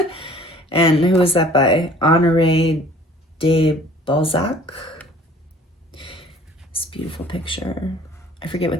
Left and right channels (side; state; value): both; normal; correlation 0.52